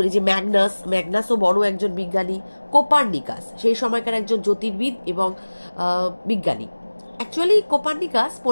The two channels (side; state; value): both; inverted; correlation -1.00